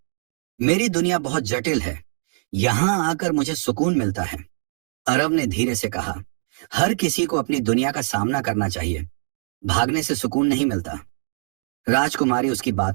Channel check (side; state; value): left; silent; digital silence